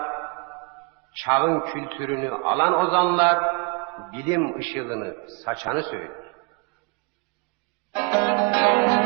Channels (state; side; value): quieter; left; 33.0 dB